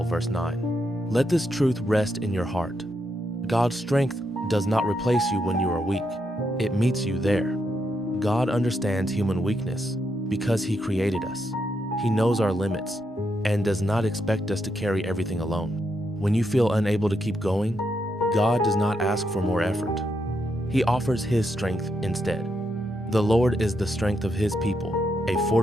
verse 9. Let this truth rest in your heart. God's strength does not replace you when you are weak. It meets you there. God understands human weakness because He created us. He knows our limits and does not expect us to carry everything alone. When you feel unable to keep going, God does not ask for more effort. He offers His strength instead. The Lord is the strength of His people, a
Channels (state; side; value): normal; both; correlation 0.80